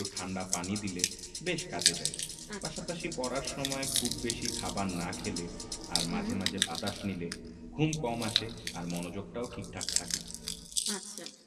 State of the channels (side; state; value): both; identical; correlation 1.00